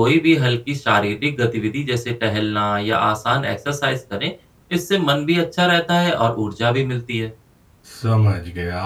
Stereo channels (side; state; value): both; identical; correlation 1.00